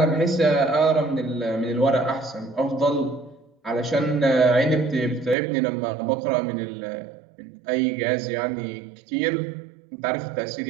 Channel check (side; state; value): left; drops out; at 5.4 s